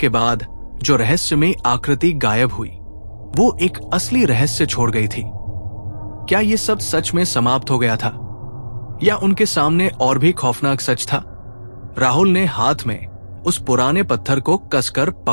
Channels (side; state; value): both; inverted; correlation -1.00